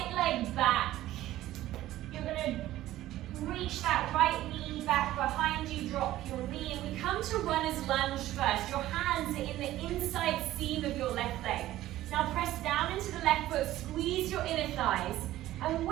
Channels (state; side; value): quieter; left; 14.8 dB